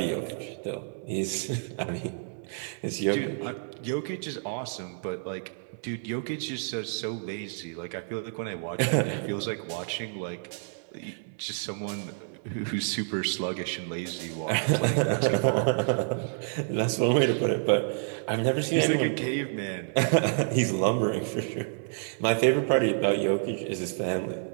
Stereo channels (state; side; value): silent; left; 59 dB below the other